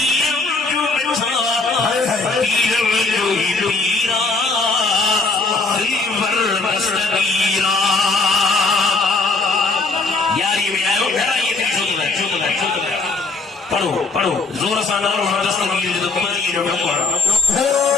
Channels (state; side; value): quieter; right; 3.7 dB